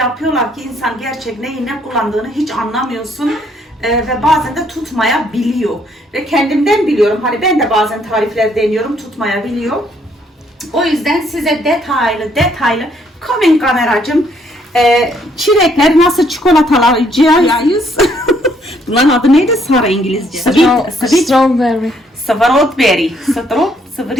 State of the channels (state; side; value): normal; both; correlation 0.68